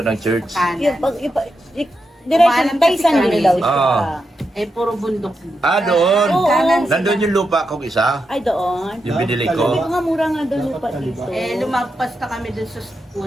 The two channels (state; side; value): normal; both; correlation 0.86